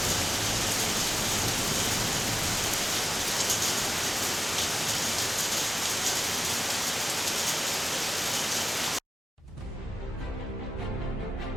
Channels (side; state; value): both; normal; correlation 0.95